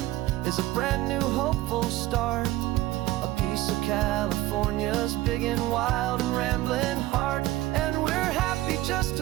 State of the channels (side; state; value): left; quieter; 16.8 dB